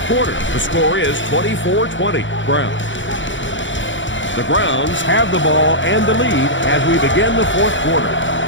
quarter. The score is 24-20, Browns. The Browns have the ball and the lead as we begin the 4th quarter.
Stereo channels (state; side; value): late; right; 0.55 ms